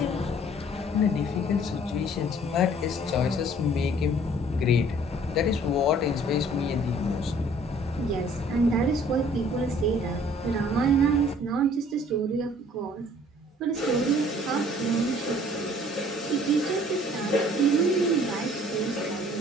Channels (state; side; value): normal; both; correlation 0.55